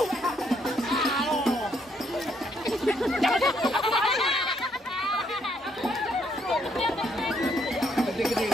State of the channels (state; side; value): normal; both; correlation 0.71